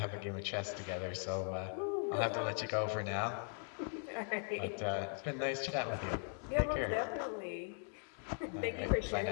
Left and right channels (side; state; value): right; silent; 51 dB below the other